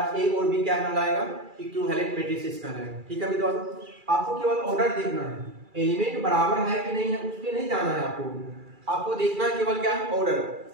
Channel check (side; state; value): left; late; 2.3 ms